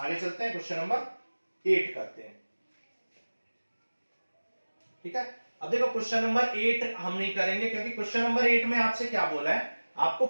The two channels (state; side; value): inverted; both; correlation -1.00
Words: चलते हैं, क्वेश्चन नंबर 8 करते हैं। ठीक है, अब देखो क्वेश्चन नंबर 8 हम नहीं करेंगे क्योंकि क्वेश्चन नंबर 8 में आपसे क्या बोला है, आपको